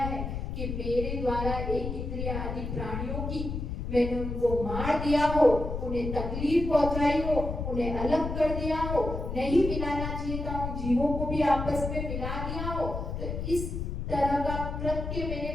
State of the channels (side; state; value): left; noise; rumble, 4 dB below the sound